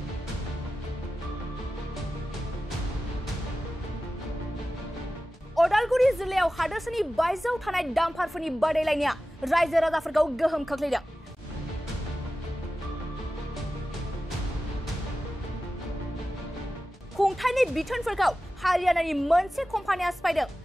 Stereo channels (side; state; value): both; normal; correlation 0.94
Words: अदालगुरि जिल्लायाव हादोरसानि बायजोआव थानाय डाम्पारफोरनि बादायलायनाया रायजो राजाफोरखौ गोहोम खोख्लैदों। खुंथायनि बिथोनफोरखौ हारियानानि मोनसे कम्पानिया सिफायदों।